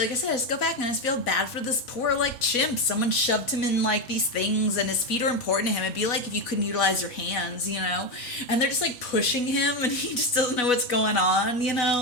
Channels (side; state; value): both; normal; correlation 0.11